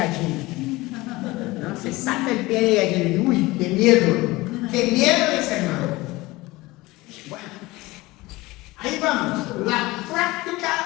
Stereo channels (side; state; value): right; quieter; 20.5 dB